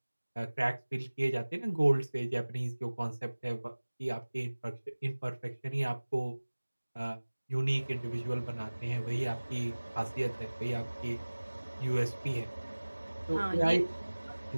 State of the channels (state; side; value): inverted; both; correlation -1.00